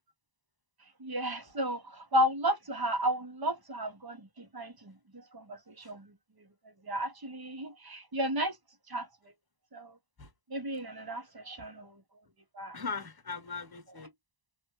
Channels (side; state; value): left; late; 1.0 ms